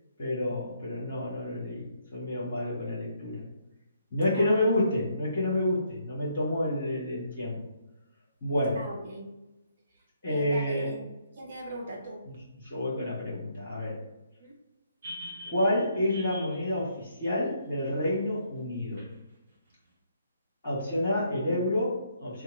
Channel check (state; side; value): inverted; both; correlation -0.72